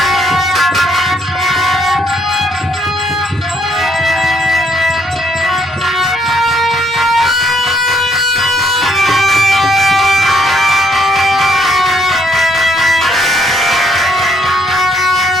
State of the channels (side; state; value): both; normal; correlation 0.69